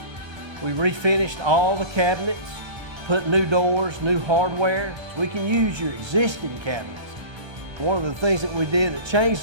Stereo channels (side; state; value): left; late; 1.3 ms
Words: We refinished all the cabinets, put new doors, new hardware, so we can use your existing cabinets. One of the things that we did that changed